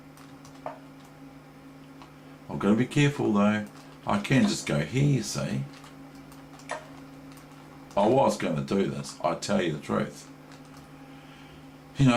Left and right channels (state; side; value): identical; both; correlation 1.00